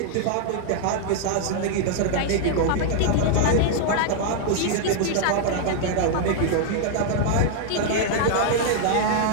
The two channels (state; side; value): different; both; correlation -0.01